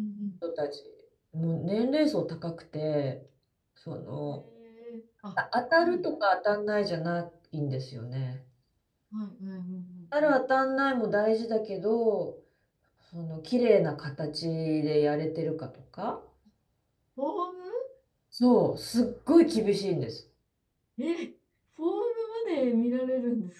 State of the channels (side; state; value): both; identical; correlation 1.00